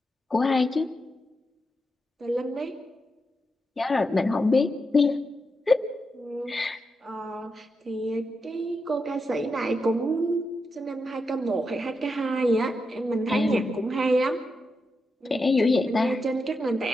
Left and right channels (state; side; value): normal; both; correlation 0.86